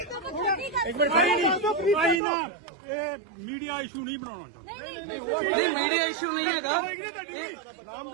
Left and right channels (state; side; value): drops out; left; at 2.2 s